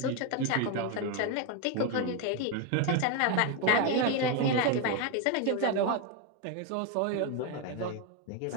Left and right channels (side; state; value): both; different; correlation 0.02